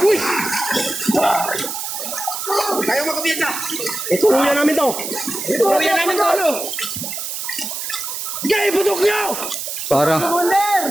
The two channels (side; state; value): right; noise; hiss, 5 dB below the sound